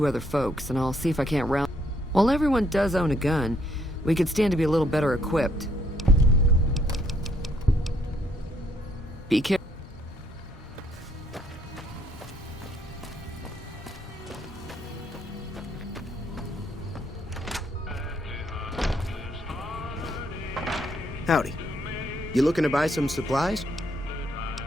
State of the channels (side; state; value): both; normal; correlation 0.70